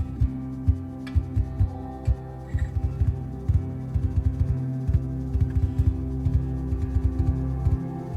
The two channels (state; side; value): identical; both; correlation 1.00